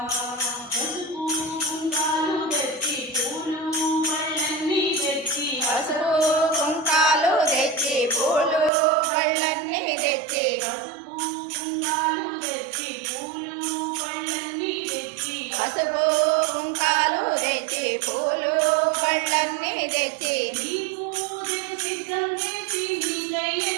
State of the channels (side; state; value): left; drops out; at 8.7 s